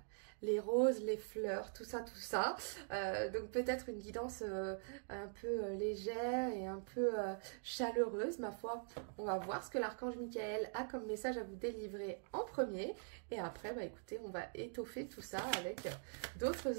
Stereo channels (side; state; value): left; silent; digital silence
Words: les roses, les fleurs, tout ça, tout ça. Donc peut-être une guidance un peu légère et un peu chaleureuse, ma foi. On va voir ce que l'archange Michael a comme message à vous délivrer en premier. Et après, bah écoutez, on va étoffer tout ça avec